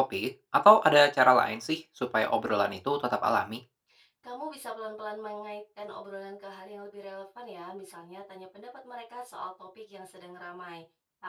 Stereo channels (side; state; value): both; identical; correlation 1.00